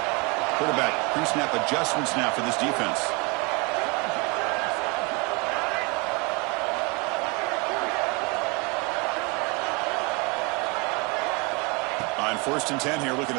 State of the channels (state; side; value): quieter; left; 27.9 dB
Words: Quarterback pre-snap adjustments now for this defense. On first and 10 here, looking